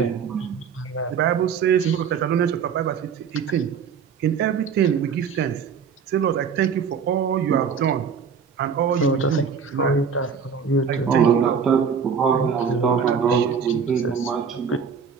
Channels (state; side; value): quieter; left; 6.5 dB